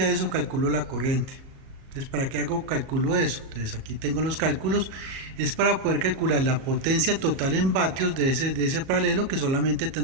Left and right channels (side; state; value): left; late; 38 ms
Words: a eso calculo la corriente. Entonces, ¿para qué hago cálculo de eso? Entonces, aquí tengo los cálculos, es para poder calcular la potencia total en vatios de ese paralelo, que solamente